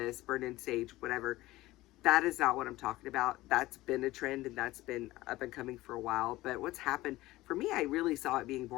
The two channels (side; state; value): right; quieter; 18.0 dB